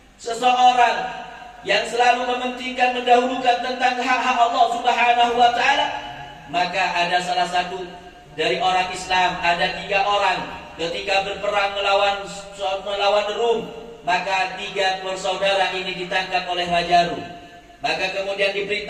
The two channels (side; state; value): both; identical; correlation 1.00